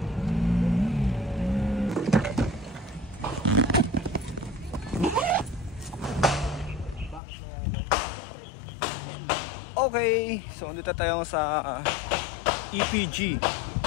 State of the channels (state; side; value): drops out; right; at 7.2 s